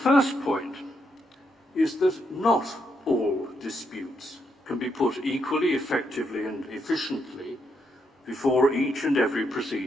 point is that not all disputes can be put equally effectively and efficiently before each and every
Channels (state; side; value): normal; both; correlation 0.79